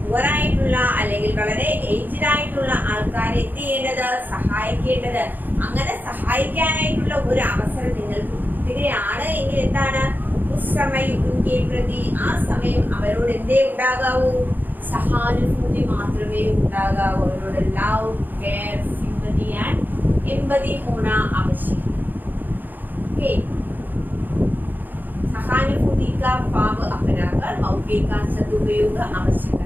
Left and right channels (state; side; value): late; left; 0.087 ms